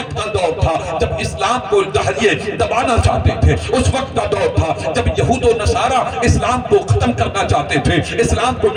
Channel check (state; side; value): identical; both; correlation 1.00